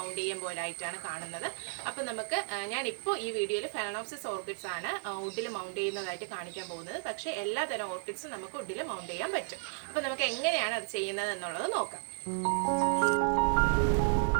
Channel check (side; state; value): left; silent; 56 dB below the other